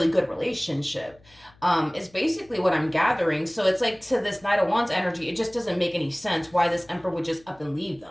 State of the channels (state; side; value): noise; left; hum, 29 dB below the sound